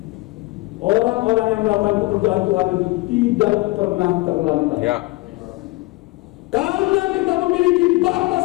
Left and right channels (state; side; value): quieter; right; 21.9 dB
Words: Orang-orang yang melakukan pekerjaan Tuhan itu tidak pernah terlantar. Ya. Karena kita memiliki Bapa